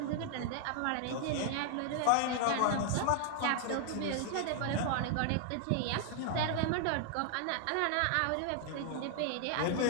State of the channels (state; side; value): different; both; correlation 0.00